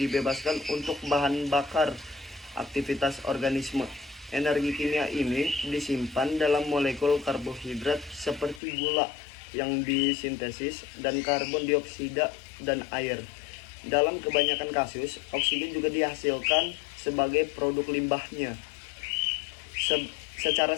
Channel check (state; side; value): drops out; right; at 8.6 s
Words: untuk bahan bakar aktivitas organisme. Energi kimia ini disimpan dalam molekul karbohidrat seperti gula yang disintesis dan karbon dioksida dan air. Dalam kebanyakan kasus, oksigen juga dihasilkan sebagai produk limbahnya. Secara